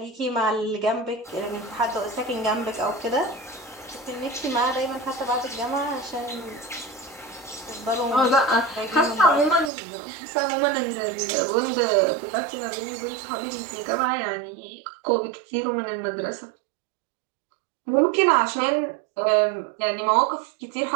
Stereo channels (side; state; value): left; drops out; at 9.7 s